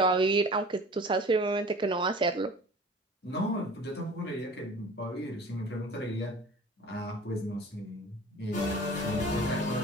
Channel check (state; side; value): normal; both; correlation 0.42